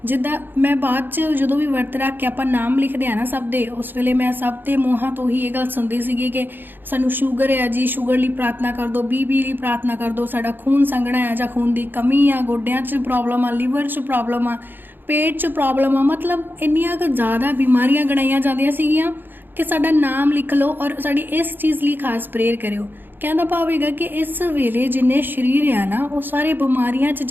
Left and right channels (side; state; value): left; late; 0.094 ms